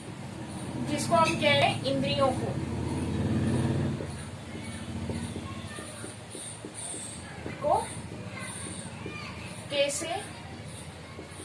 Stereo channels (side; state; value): both; identical; correlation 1.00